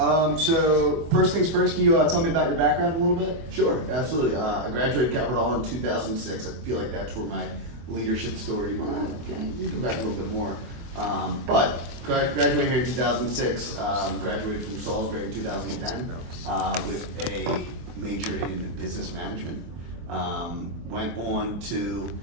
So first things first, can you tell me about your background a little bit? Sure, absolutely. I graduated Calvert Hall in 2006. I feel like that's where my leadership story. Well, you can go back a little bit more. But graduated here in 2006. Graduated from Salisbury in 2010 with a major in business management. Went on to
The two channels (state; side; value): late; left; 24 ms